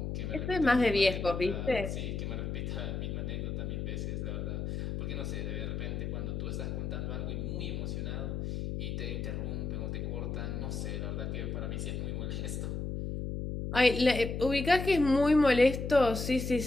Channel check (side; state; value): left; noise; hum, 3 dB below the sound